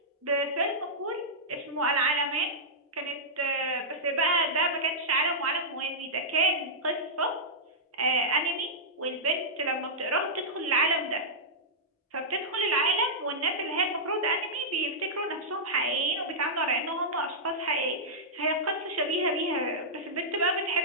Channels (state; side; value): normal; both; correlation -0.11